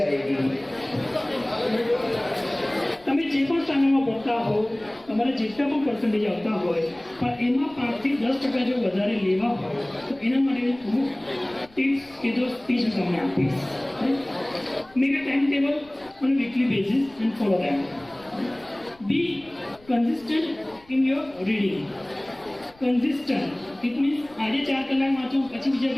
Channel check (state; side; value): noise; left; rumble, 27 dB below the sound